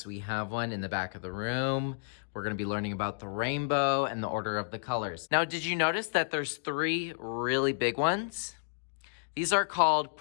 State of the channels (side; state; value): right; silent; digital silence